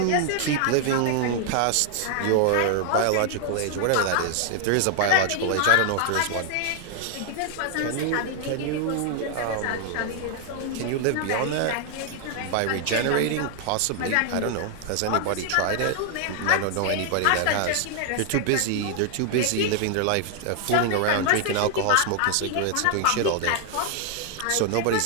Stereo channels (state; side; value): different; both; correlation 0.00